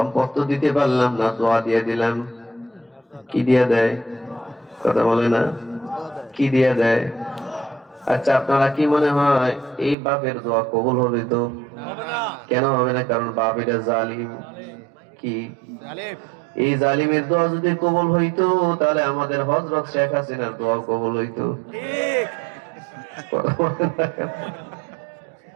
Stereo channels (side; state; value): left; drops out; at 10.0 s